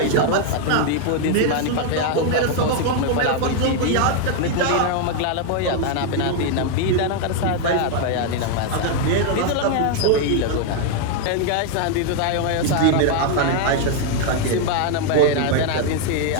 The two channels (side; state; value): both; different; correlation 0.00